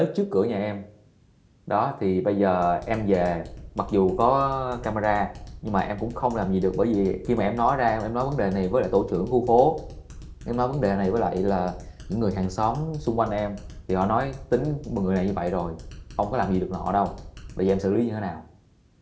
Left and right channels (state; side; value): identical; both; correlation 1.00